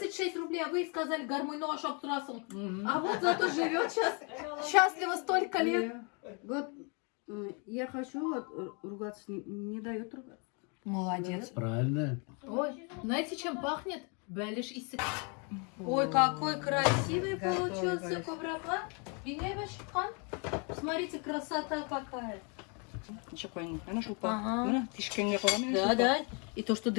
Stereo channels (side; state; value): right; quieter; 35.1 dB